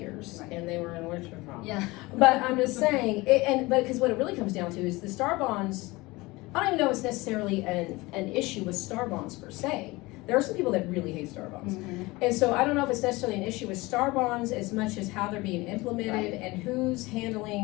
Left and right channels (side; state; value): right; quieter; 22.0 dB